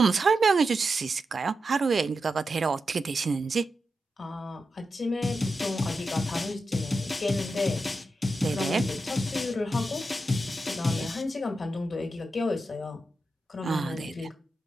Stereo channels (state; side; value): normal; both; correlation 0.89